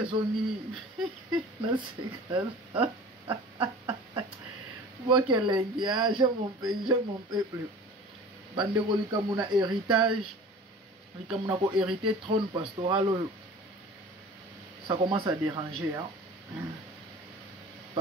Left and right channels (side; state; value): both; normal; correlation 0.42